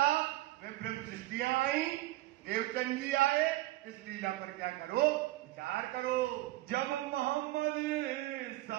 में प्रेम सृष्टियां आई, देवचंद जी आए, इस लीला पर क्या करो, विचार करो। जब मोहम्मद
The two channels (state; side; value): quieter; left; 17.6 dB